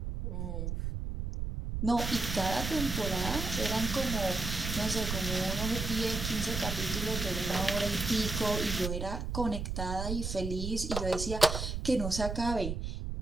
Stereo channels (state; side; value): noise; right; rumble, 4 dB below the sound